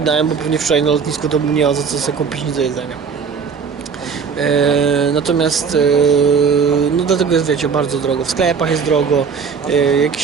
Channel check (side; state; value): left; quieter; 6.0 dB